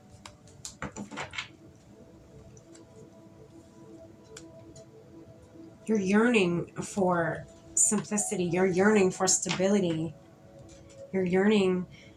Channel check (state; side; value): identical; both; correlation 1.00